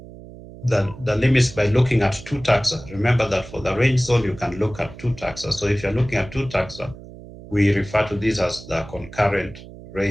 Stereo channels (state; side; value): noise; right; hum, 17 dB below the sound